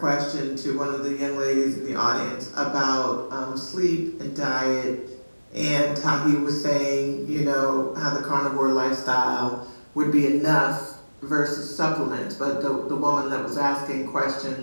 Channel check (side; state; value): both; inverted; correlation -1.00